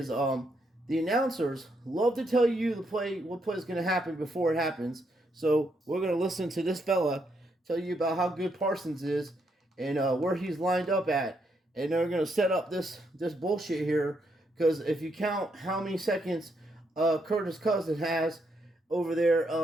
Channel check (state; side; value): normal; both; correlation 0.77